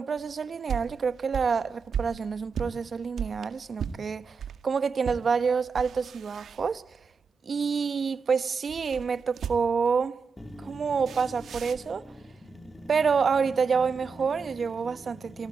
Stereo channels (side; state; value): left; quieter; 5.4 dB